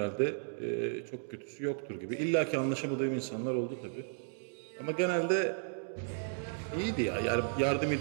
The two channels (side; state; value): left; silent; digital silence